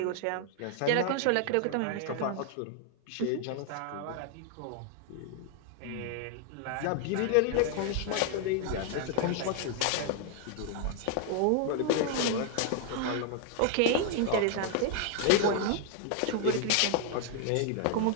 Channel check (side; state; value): both; different; correlation 0.00